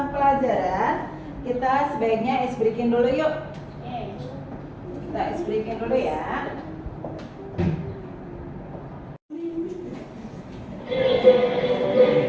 pelajaran, kita sebaiknya ice breaking dulu yuk. Kita ice breaking dulu ya.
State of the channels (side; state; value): both; identical; correlation 1.00